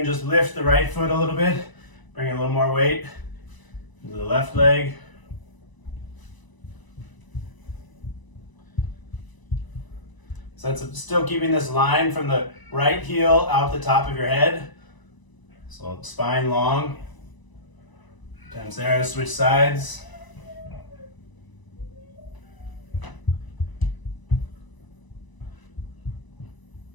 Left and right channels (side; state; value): right; late; 1.0 ms